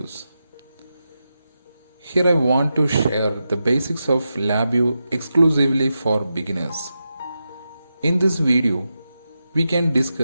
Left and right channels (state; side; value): inverted; both; correlation -0.89